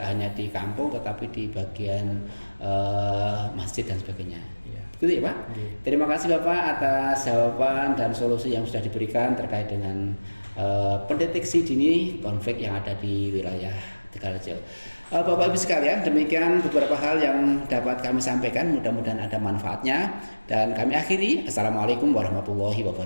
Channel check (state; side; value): inverted; both; correlation -1.00